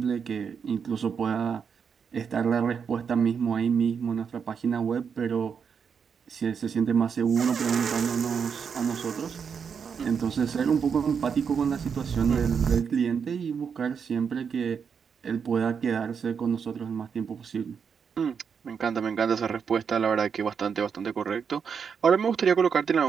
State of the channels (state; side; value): quieter; left; 6.6 dB